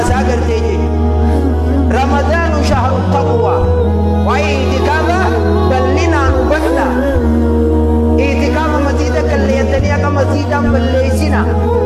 garteje رمضان شهر التقوى واعتكاف بلنا نبنا اعتكاف مزيدك اللي يتنيك مزيدا بليسنا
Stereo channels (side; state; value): both; identical; correlation 1.00